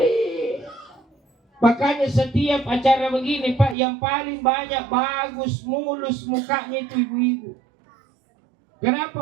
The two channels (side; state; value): left; drops out; at 3.8 s